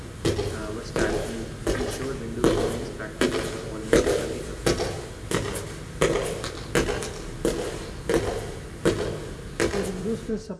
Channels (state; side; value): identical; both; correlation 1.00